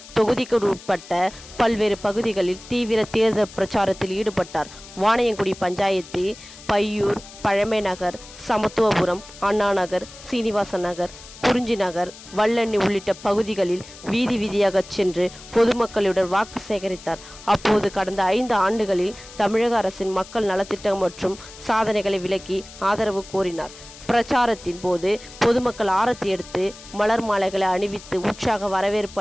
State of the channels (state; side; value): noise; left; hiss, 18 dB below the sound